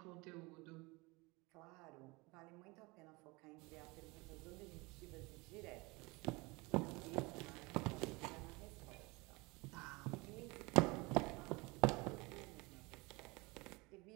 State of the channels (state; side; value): quieter; left; 25.0 dB